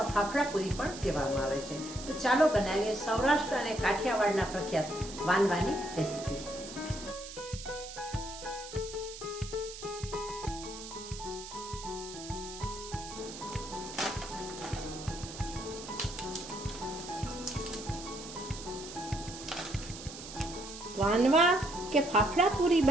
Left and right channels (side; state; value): right; noise; hiss, 12 dB below the sound